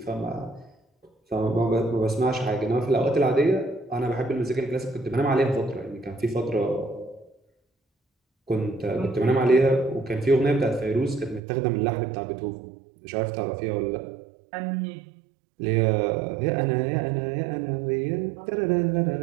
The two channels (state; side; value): drops out; left; at 11.4 s